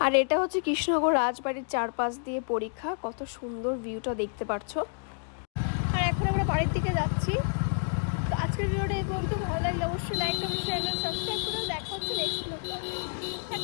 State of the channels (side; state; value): right; silent; 58 dB below the other